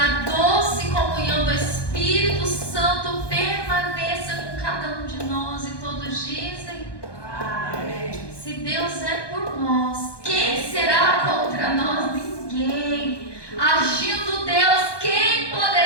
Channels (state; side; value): late; right; 1.2 ms